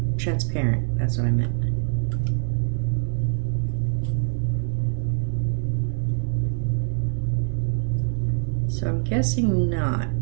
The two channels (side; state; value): left; silent; digital silence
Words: Transparent, that's what I meant. So I'm guessing not.